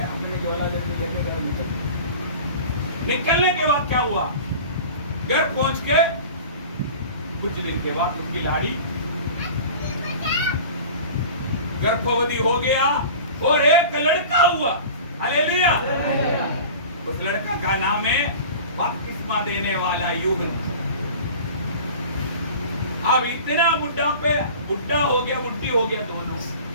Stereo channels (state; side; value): inverted; both; correlation -0.38